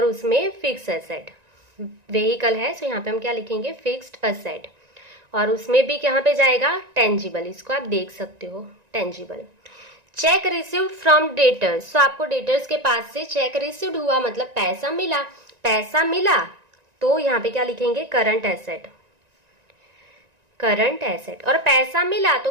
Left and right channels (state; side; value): late; left; 1.9 ms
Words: उसमें फिक्स एसेट। व्हीकल है तो यहाँ पे हम क्या लिखेंगे, फिक्स्ड असेट। और उसमें भी कहाँ पे जाएगा, टेंजिबल, इसको आप देख सकते हो, tangible. Check received from debtors, तो आपको डेटर्स के पास से चेक रिसीव्ड हुआ मतलब पैसा मिला, पैसा मिला तो यहाँ पे क्या लिखेंगे, करंट एसेट, करंट एसेट। और पैसा मिला तो